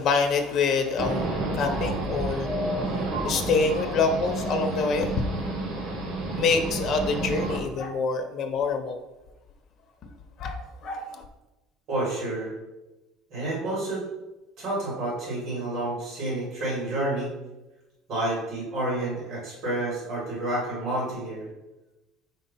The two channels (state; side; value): normal; both; correlation 0.44